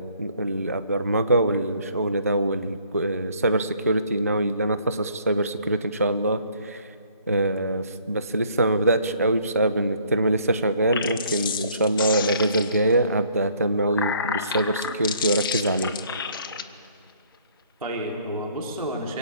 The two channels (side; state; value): both; inverted; correlation -0.61